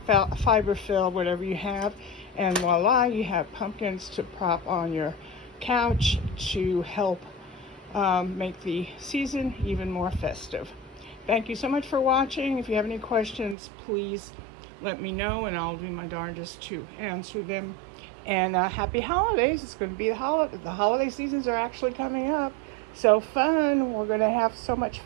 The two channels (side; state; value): left; drops out; at 13.6 s